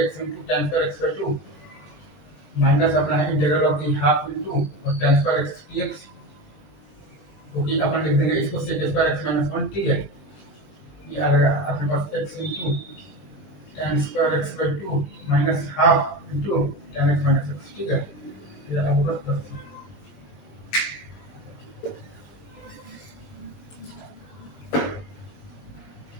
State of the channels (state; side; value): late; right; 21 ms